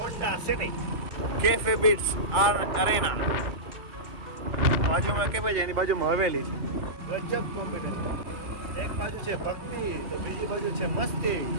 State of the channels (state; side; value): late; left; 2.1 ms